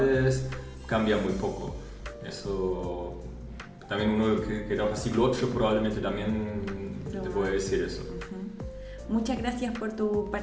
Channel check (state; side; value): identical; both; correlation 1.00